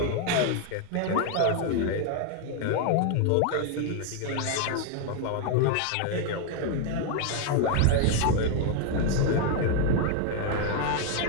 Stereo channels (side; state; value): both; different; correlation 0.01